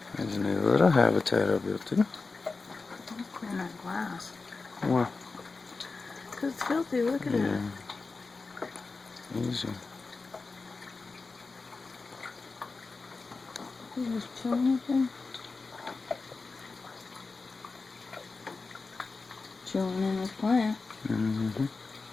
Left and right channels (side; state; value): right; quieter; 4.0 dB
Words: There's a new little habitat I built him. Don't clean that glass. Why? Because it's filthy, look at it. Easy. You just chilling up there? Chilling in this plant. Mm-hmm.